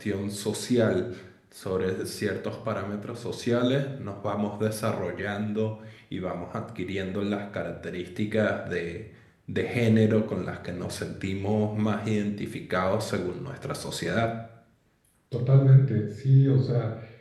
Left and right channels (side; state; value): both; identical; correlation 1.00